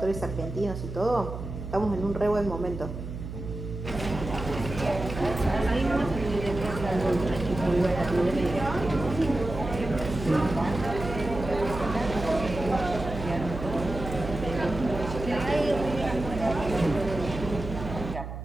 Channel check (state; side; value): noise; right; hum, 8 dB below the sound